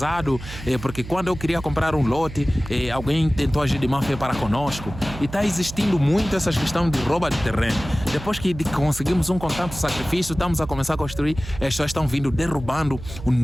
porque quando eu queria comprar um lote, alguém tentou agir de má fé para conosco, e está existindo muito essa questão de roubo de terreno. Depois que conseguimos um constante sacrifício, estamos a começar a construir, as pessoas estão vindo derrubando os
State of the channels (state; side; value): noise; right; hum, 12 dB below the sound